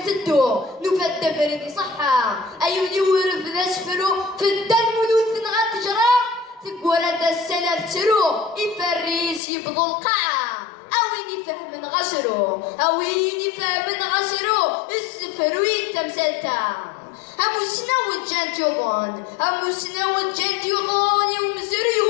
نفد فريدي صحة أيوني ورف ذا سفرو فدا الملوث غتجرى تقول هذا السلف ترو يفريس يبضو القاعة أوين يفهم غسرو أوين يفهم غسرو السفر ويتمسلتا أموسنا وجانت يوضون أموسنا وجانت يوضون يوم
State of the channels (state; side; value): drops out; right; at 9.4 s